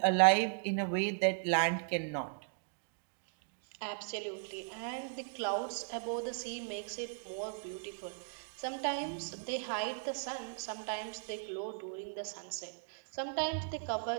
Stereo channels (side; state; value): left; silent; digital silence